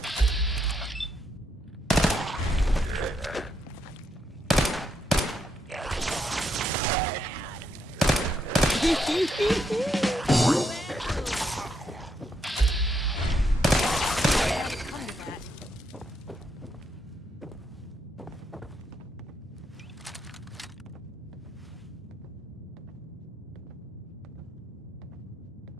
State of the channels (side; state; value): both; normal; correlation 0.78